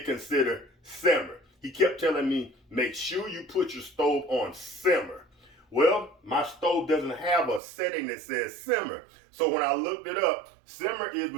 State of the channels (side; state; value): left; drops out; at 7.6 s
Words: consider simmer. He kept telling me, make sure you put your stove on simmer. Well, my stove doesn't have a setting that says simmer. So when I looked it up, simmer is